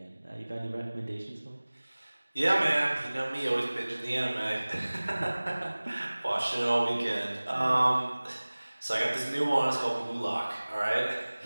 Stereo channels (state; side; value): inverted; both; correlation -1.00